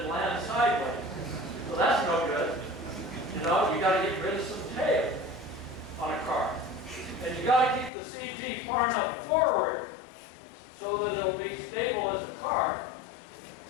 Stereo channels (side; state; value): right; drops out; at 7.9 s